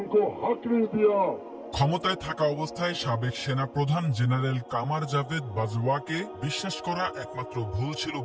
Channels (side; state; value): both; identical; correlation 1.00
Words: हक नहीं दिया। ক্ষমতায় থাকা অবস্থায় সাবেক সেনা প্রধান জেনারেল কামার জাভেদ বাজওয়াকে বিশ্বাস করা একমাত্র ভুল ছিল